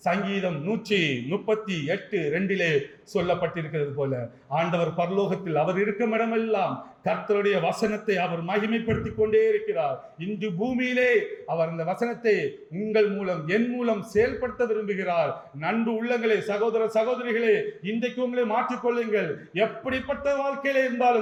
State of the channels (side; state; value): both; identical; correlation 1.00